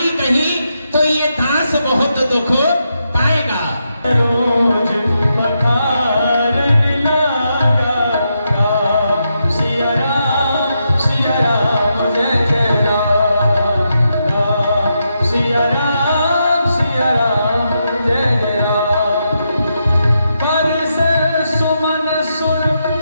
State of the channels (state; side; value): inverted; both; correlation -0.83